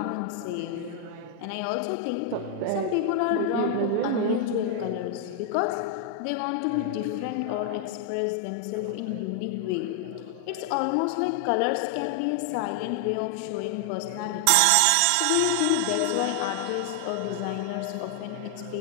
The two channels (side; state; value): both; different; correlation 0.00